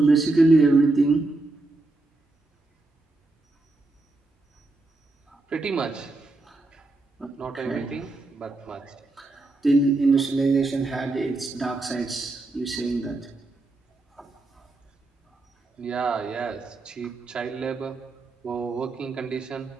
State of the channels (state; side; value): quieter; left; 3.1 dB